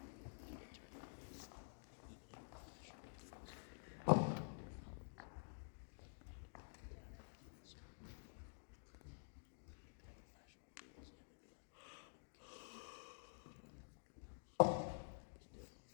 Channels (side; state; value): right; silent; digital silence